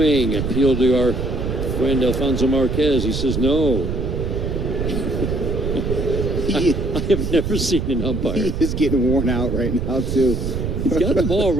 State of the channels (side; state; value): right; noise; rumble, 2 dB below the sound